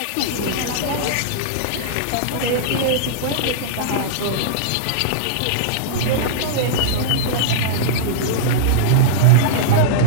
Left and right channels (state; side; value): different; both; correlation -0.02